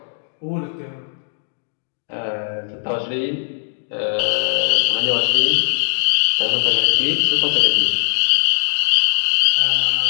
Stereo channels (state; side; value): silent; right; digital silence